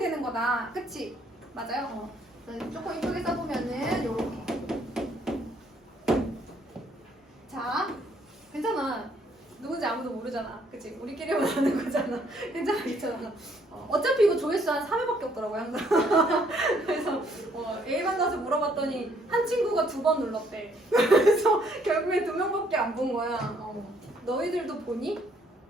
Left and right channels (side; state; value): both; normal; correlation 0.67